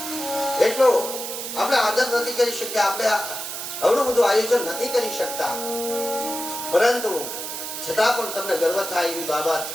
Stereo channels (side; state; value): right; noise; hiss, 6 dB below the sound